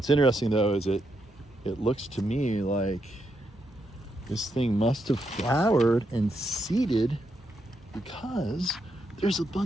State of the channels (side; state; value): both; normal; correlation 0.81